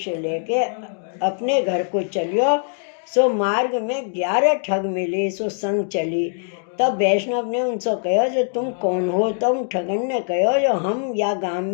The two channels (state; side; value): silent; right; digital silence